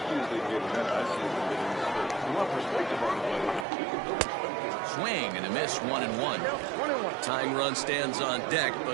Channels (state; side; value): drops out; left; at 3.7 s